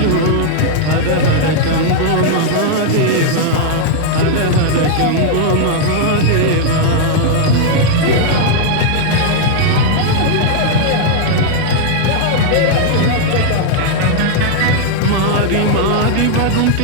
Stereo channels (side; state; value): both; different; correlation -0.01